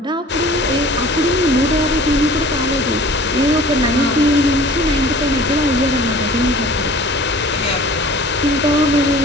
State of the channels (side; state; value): both; normal; correlation 0.46